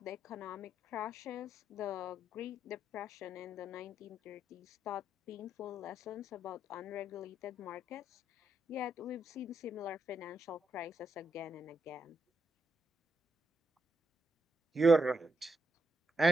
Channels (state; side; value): normal; both; correlation 0.81